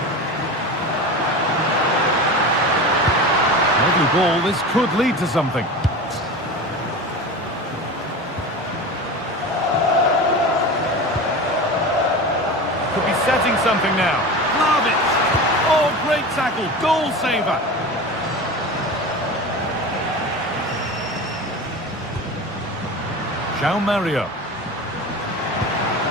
Lovely ball. This could lead to something. Could be setting something now. Vlahovic. Oh, great tackle. Goal saver. João Mario.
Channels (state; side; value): normal; both; correlation 0.30